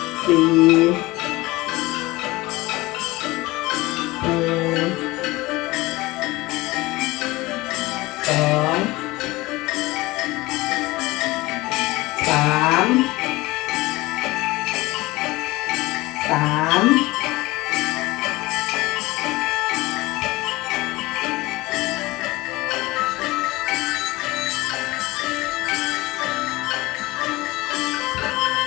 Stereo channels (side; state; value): right; quieter; 20.5 dB